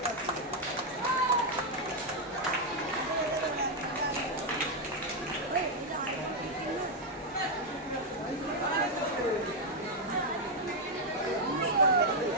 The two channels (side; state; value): both; normal; correlation 0.01